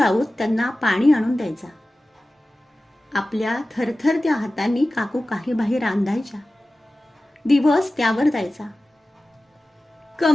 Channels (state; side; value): normal; both; correlation 0.96